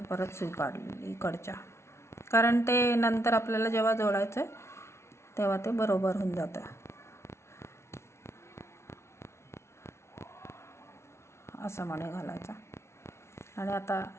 परत सुई काढली इकडच्या. कारण ते नंतर आपल्याला जेव्हा जोडायचं आहे तेव्हा ते बरोबर होऊन जातं. असं मणी घालायचा आणि आता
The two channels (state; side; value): late; right; 0.13 ms